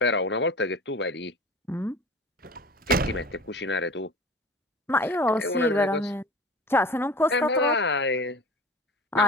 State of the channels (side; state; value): both; normal; correlation 0.37